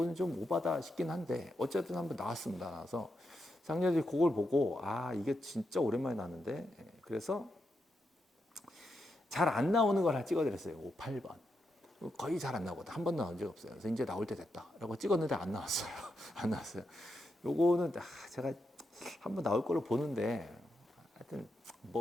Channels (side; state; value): both; normal; correlation 0.84